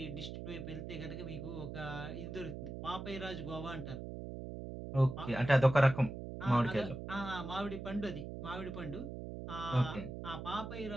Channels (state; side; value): noise; right; hum, 8 dB below the sound